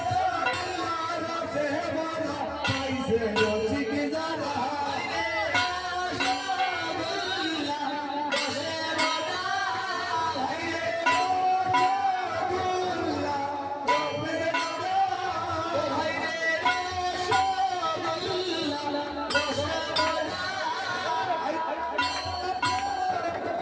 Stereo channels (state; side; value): identical; both; correlation 1.00